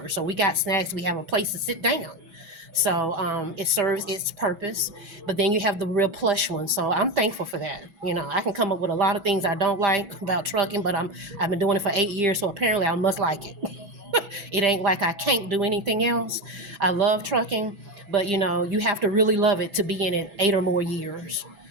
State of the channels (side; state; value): left; late; 6.1 ms